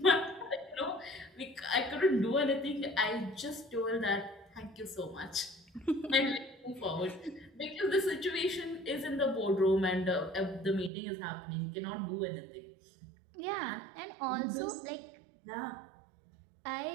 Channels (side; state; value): left; drops out; at 10.9 s